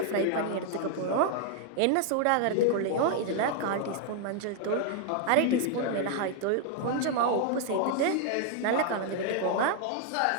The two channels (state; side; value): different; both; correlation 0.00